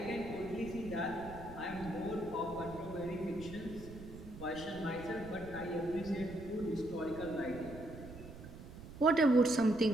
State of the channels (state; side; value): noise; right; rumble, 14 dB below the sound